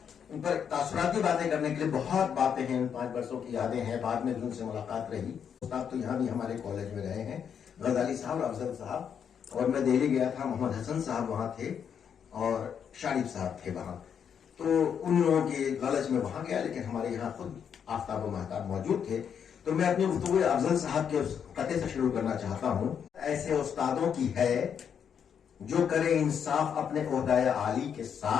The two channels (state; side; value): quieter; right; 7.8 dB